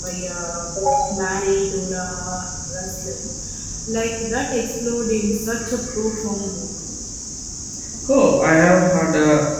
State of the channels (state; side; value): identical; both; correlation 1.00